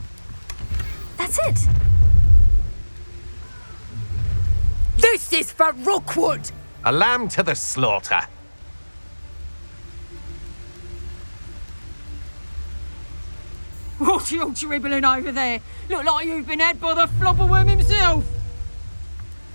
That's it. This is for Rookwood! A lamb to the slaughter. What are you dribbling over there? Look like you've been had by the flopperworm himself.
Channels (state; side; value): inverted; both; correlation -1.00